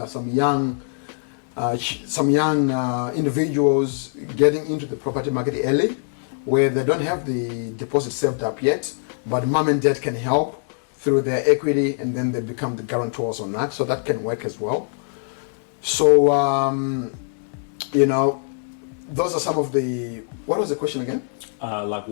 some young individuals getting into the property market early, where they don't have the deposit saved up yet, but mom and dad can help through their equity, and then they become the guarantors on that. So that can work as well. So those are some of the. What was the question again? Like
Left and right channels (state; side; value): silent; right; digital silence